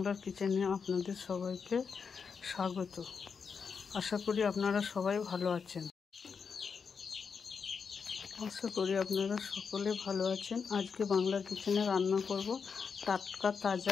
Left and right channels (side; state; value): right; quieter; 5.9 dB